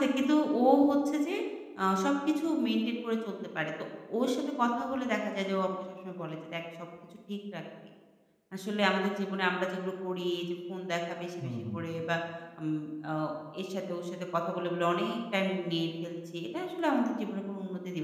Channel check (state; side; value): identical; both; correlation 1.00